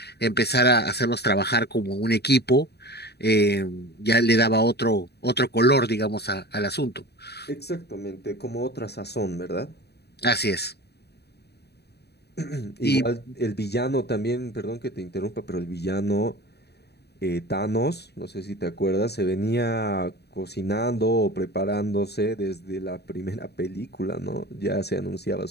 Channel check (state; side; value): late; right; 0.48 ms